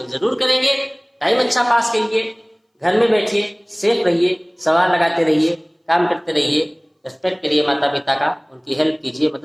जरूर करेंगे। टाइम अच्छा पास करिए, घर में बैठिए, सेफ रहिए, सवाल लगाते रहिए, काम करते रहिए, रिस्पेक्ट करिए माता पिता का, उनकी हेल्प कीजिए,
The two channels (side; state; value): both; identical; correlation 1.00